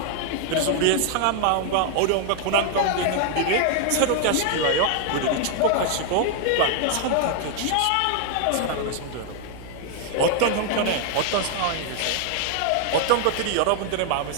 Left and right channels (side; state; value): both; different; correlation 0.00